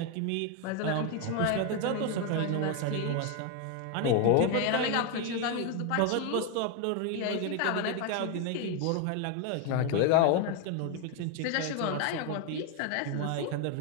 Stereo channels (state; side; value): different; both; correlation 0.01